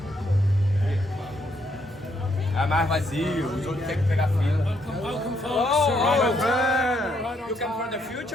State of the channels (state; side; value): normal; both; correlation 0.73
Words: É mais vazio, os outros têm que pegar fila. Welcome, folks. Oh, you come from the